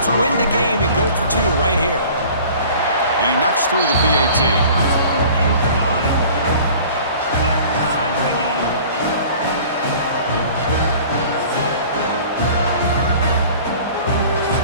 win the game and go for 2 right here. And he knocks through the PAT.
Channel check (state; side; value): inverted; both; correlation -0.46